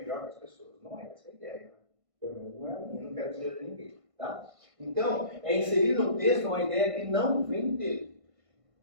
que as pessoas. Não é essa a ideia. Pelo menos não é a minha, não quero dizer de ninguém. Tá? Então, é inserir no texto uma ideia que não vem dele.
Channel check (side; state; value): left; late; 1.5 ms